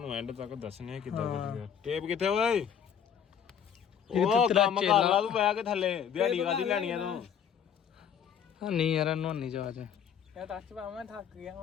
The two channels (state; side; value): quieter; right; 8.3 dB